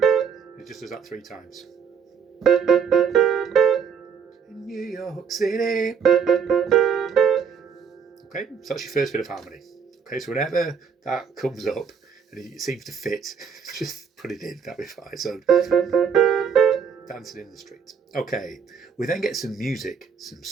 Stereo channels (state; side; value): quieter; left; 6.7 dB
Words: it just does that 3 times. In New York City. Okay, so that's your first bit of harmony. Okay, so whenever that comes up and it seems to fit, just put it in, that'll be fine. So, dancing in the street. Okay, we then get some music, some